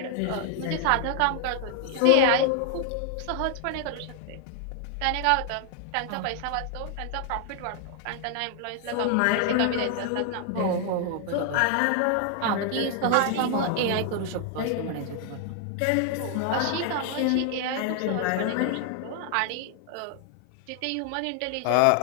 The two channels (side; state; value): both; different; correlation 0.00